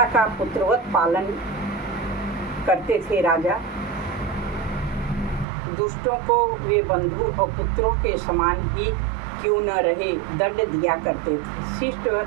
का पुत्रवत पालन करते थे। राजा दुष्टों को वे बंधु और पुत्रों के समान ही क्यों न रहे दंड दिया करते थे। शिष्ट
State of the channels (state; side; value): drops out; left; at 5.5 s